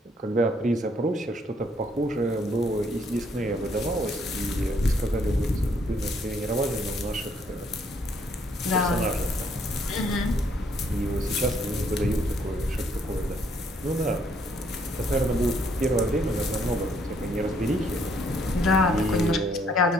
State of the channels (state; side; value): normal; both; correlation 0.68